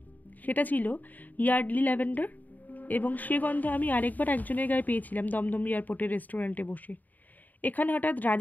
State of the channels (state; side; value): late; right; 0.083 ms